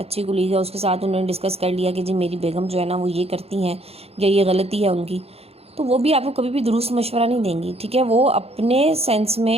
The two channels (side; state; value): left; late; 0.29 ms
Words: کولیگ ہے، اس کے ساتھ انہوں نے ڈسکس کر لیا کہ جی میری بیگم جو ہے نا وہ یہ کرتی ہیں یا یہ غلطی ہے ان کی، تو وہ بھی آپ کو کبھی بھی درست مشورہ نہیں دیں گی، ٹھیک ہے؟ وہ اپنے سینس میں